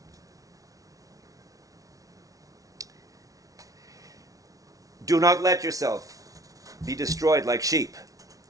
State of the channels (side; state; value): left; late; 0.17 ms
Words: Do not let yourself be destroyed like sheep.